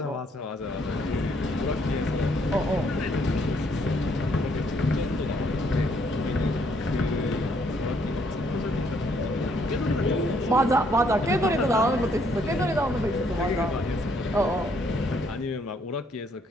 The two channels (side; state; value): both; normal; correlation 0.68